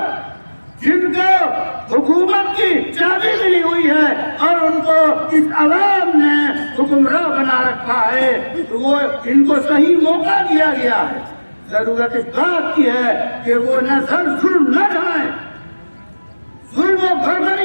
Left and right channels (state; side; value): inverted; both; correlation -1.00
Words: جن کو حکومت کی چابی ملی ہوئی ہے اور ان کو اس عوام نے حکمراں بنا رکھا ہے، تو وہ ان کو صحیح موقع دیا گیا ہے۔ ضرورت اس بات کی ہے کہ وہ نظر ظلم نہ ڈھائیں، ظلم و